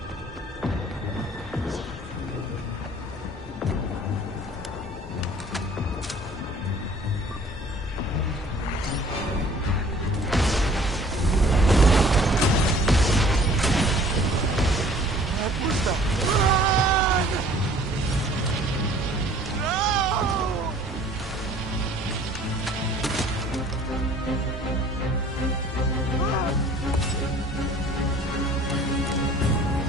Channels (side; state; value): both; normal; correlation 0.52